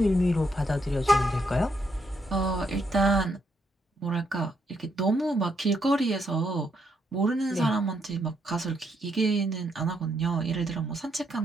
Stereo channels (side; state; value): both; normal; correlation 0.76